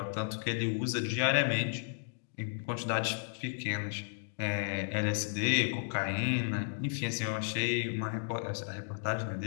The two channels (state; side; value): silent; right; digital silence